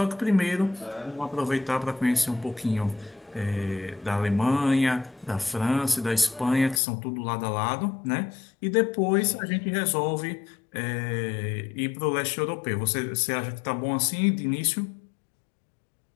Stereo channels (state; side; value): drops out; right; at 6.8 s